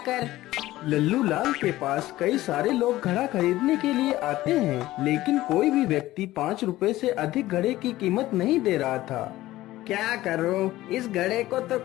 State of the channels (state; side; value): quieter; right; 16.3 dB